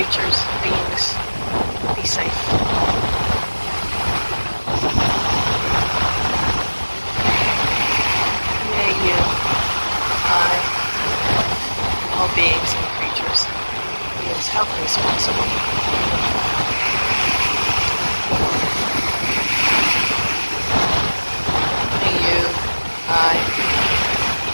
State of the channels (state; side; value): inverted; both; correlation -1.00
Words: beings be safe. All beings and creatures be as healthy as possible. May you, I,